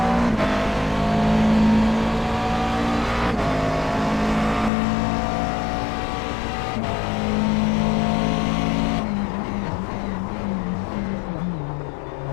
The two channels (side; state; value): right; drops out; at 4.7 s